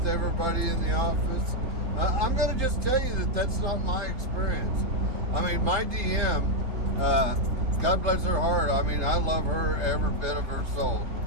everybody in the office. I'm going to just tell you that that's not my experience. I mean, my DM, God bless her heart. I mean, I love her every bit of her soul.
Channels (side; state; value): left; late; 3.7 ms